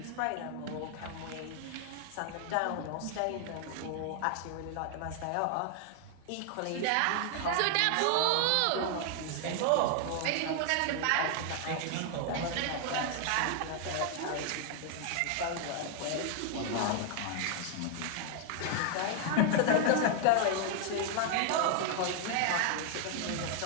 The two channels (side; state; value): both; different; correlation 0.00